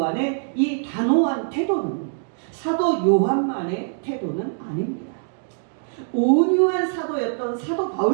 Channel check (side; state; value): left; silent; digital silence